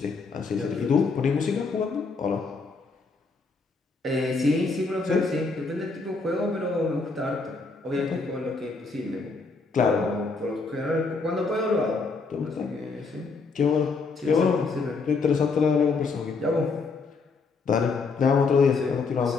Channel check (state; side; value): quieter; right; 4.3 dB